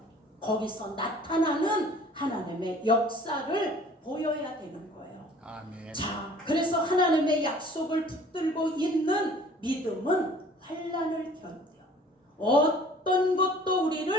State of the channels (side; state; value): both; normal; correlation 0.51